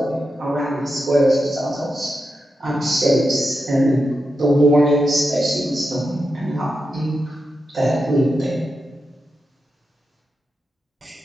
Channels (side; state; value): both; normal; correlation 0.88